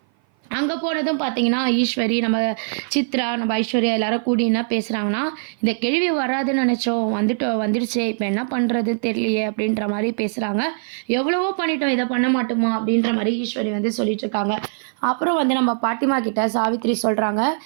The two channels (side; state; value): left; silent; 56 dB below the other